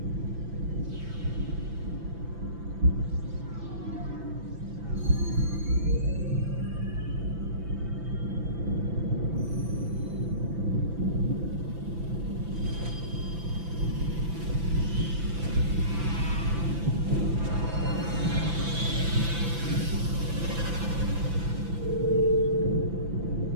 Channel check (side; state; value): left; late; 6.0 ms